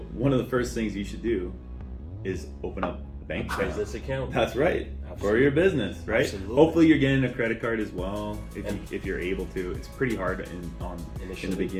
one of the first things you should do is open up a bank account. Business account. That's right. Absolutely. For your business, right? Absolutely. Hopefully you're getting a credit card as well if you're able to. It's pretty hard in the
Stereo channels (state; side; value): identical; both; correlation 1.00